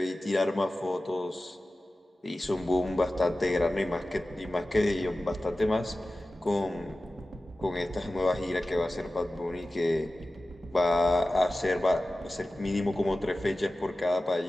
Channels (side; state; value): both; normal; correlation 0.95